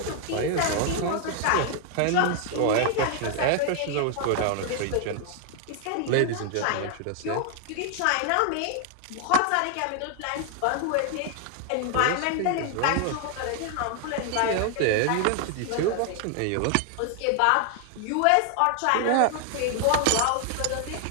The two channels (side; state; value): both; different; correlation 0.00